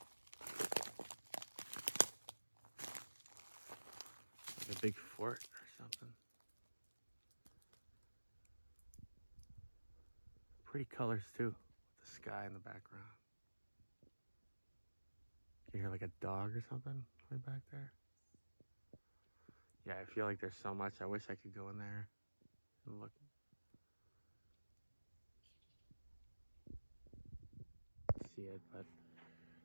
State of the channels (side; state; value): both; inverted; correlation -1.00